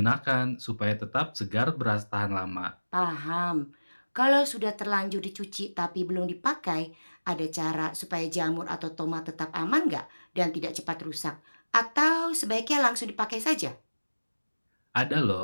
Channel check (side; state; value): both; inverted; correlation -1.00